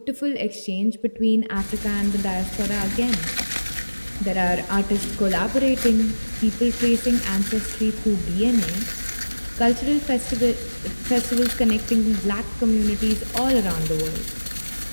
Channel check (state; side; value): inverted; both; correlation -1.00